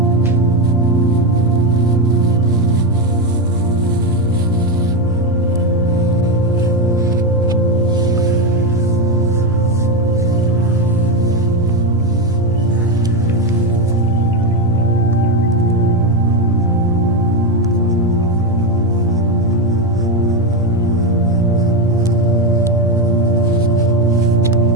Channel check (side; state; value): both; normal; correlation 0.11